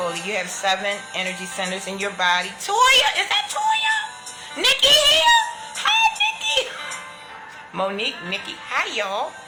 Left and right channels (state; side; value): identical; both; correlation 1.00